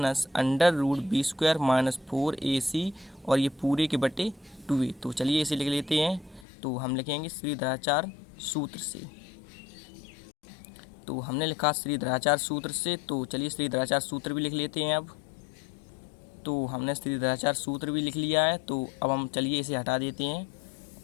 √b² -4ac, और ये पूरे के बटे 2a। तो चलिए इसे लिख लेते हैं। तो हम लिखेंगे श्रीधराचार्य सूत्र से। तो हमने लिखा श्रीधराचार्य सूत्र से। तो चलिए श्रीधराचार्य सूत्र भी लिख लेते हैं अब। तो हमने श्रीधराचार्य सूत्र भी लिख लिया है। तो अब हम चलिए इसे हटा देते हैं,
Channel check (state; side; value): drops out; right; at 6.5 s